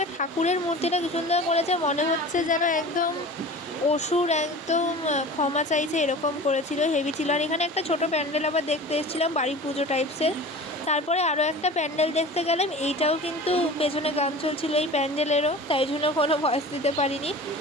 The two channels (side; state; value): both; normal; correlation 0.37